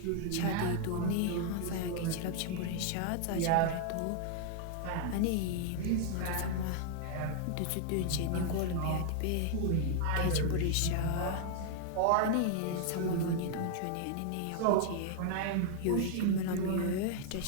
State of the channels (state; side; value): different; both; correlation 0.00